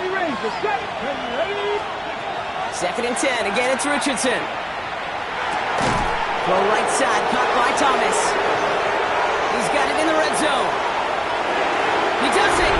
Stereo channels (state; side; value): identical; both; correlation 1.00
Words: 2nd and 10. Again, it's Richardson. Throw right side, caught by Thomas. He's got it in the red zone. He does it.